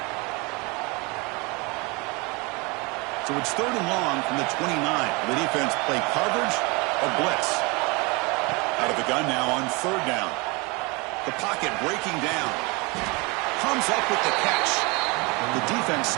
So it's third and long from the 29. The defense play coverage or blitz. Out of the gun now on third down. The pocket breaking down. Comes up with the catch. The defense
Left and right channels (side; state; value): left; quieter; 27.5 dB